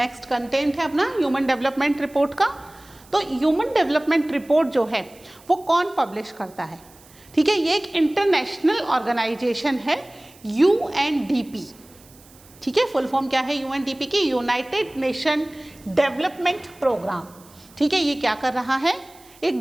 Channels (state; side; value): noise; right; hiss, 25 dB below the sound